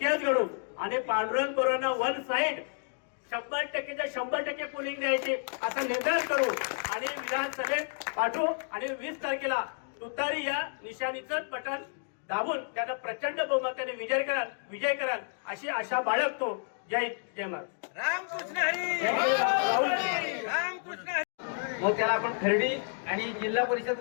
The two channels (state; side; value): silent; right; digital silence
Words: घडू आणि पांडुरंग कोरांना वन साइड 100% पोलिंग द्यायची असा निर्धार करू आणि विधानसभेत पाठवू आणि 20 तारखेला तुतारी या निशाणीचं बटन दाबून त्यांना प्रचंड बहुमताने विजय कराल अशी आशा बाळगतो. जय जय महाराज. रामकृष्ण हरी. रामकृष्ण हरी. मग त्याला आपण खर्डी आणि जिल्हा